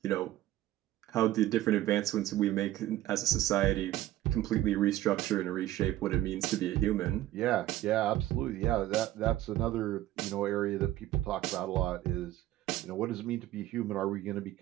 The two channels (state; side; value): quieter; left; 14.7 dB